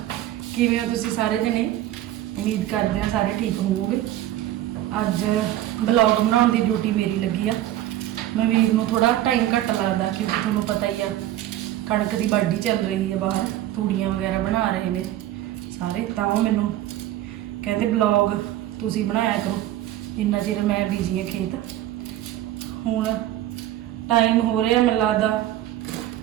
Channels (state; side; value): quieter; left; 13.7 dB